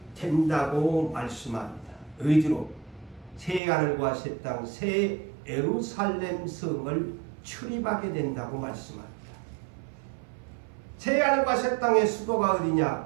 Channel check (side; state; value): left; drops out; at 3.6 s